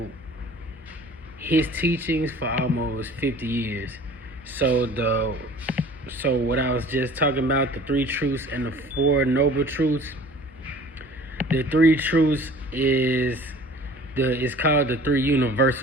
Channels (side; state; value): both; normal; correlation 0.47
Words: his teachings for almost 50 years. So what I was just talking about, the 3 truths and the 4 noble truths, the 3 truths it's called the 3